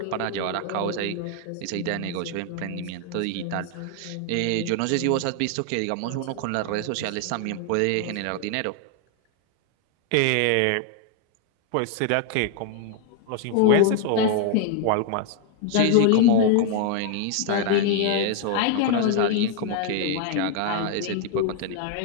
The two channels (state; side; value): different; both; correlation 0.00